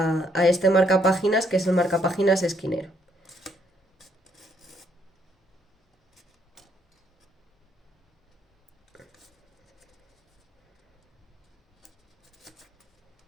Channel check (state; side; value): normal; both; correlation 0.71